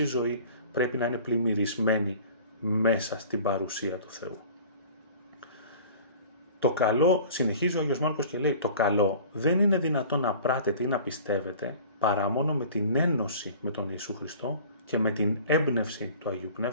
ζωή πρέπει να είναι πλημμυρισμένη μέσα στην παρουσία του Θεού. Το καλό, συνεχίζει ο Άγιος Μάρκος και λέει, το καλό δεν είναι δυνατόν να πράτετε ή να πιστεύετε παρά μόνο με την ένωση με τον Ιησού Χριστό και με την έμπνευση του Αγίου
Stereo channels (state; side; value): inverted; both; correlation -0.44